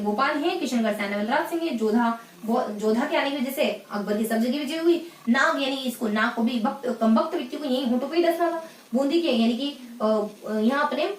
गोपाल हैं, किशनगढ़ से आने वाले राज सिंह है, जोधा के आने की वजह से अकबर की सब जगह विजय हुई। नाग यानी इसको नाग को भी कम वक्त व्यक्ति को यही होठों पे ही डसना था। बूंदी के यानी कि यहाँ अपने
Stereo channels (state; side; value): identical; both; correlation 1.00